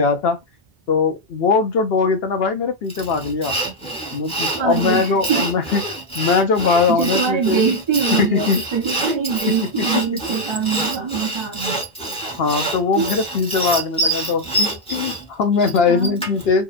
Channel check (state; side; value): normal; both; correlation 0.00